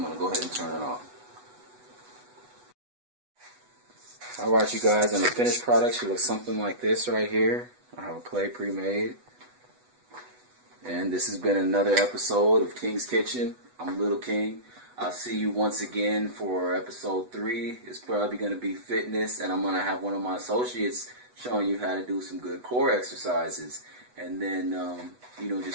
going to go ahead and turn it off. Alright, you guys, and the finished product should look something like this right here. I have a plate pre-made. And this has been another episode of King's Kitchen. I'm Little King. I'll see you once again for episode 3. It's probably going to be fitness, and I'm going to have one of my associates showing you how to do some good core exercises. And then,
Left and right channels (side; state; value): left; late; 8.1 ms